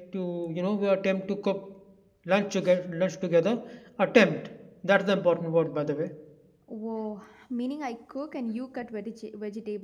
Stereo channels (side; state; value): both; identical; correlation 1.00